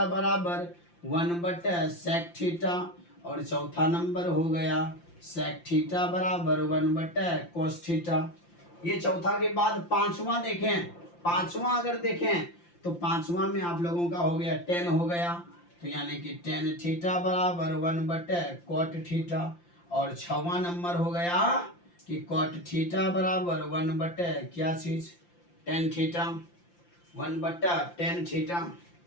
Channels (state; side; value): late; right; 5.8 ms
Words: बराबर 1 सेक थीटा, और चौथा नंबर हो गया सेक थीटा बराबर 1 कॉस थीटा। ये चौथा के बाद पांचवा देखें, पांचवा अगर देखें तो पांचवा में आप लोगों का हो गया 10 हो गया, तो यानी कि tan थीटा बराबर 1 कॉट थीटा। और छवा नंबर हो गया कि कॉट थीटा बराबर 1 क्या चीज tan थीटा, 1/tan थीटा।